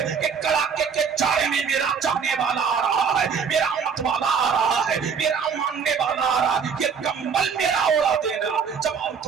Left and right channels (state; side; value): quieter; left; 6.3 dB